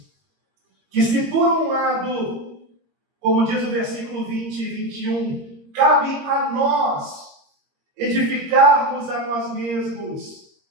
Que se por um lado, como diz o versículo 20 e 21, cabe a nós edificarmos a nós mesmos,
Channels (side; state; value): left; late; 22 ms